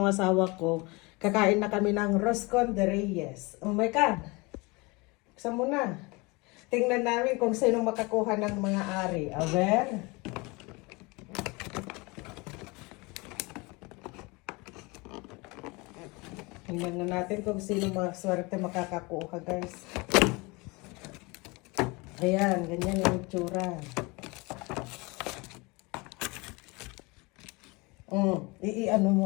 asawa ko, kakain na kami ng Roscon de Reyes. Oh my God! Buksan mo na. Tingnan namin kung sino makakuha ng mga ari. Aber? Tingnan na natin kung sino maswerte makakakuha, guys. Ayan, ganyan yung itsura. Ano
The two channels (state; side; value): quieter; right; 26.0 dB